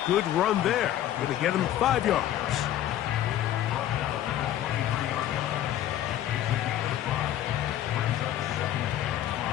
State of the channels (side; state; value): right; quieter; 12.2 dB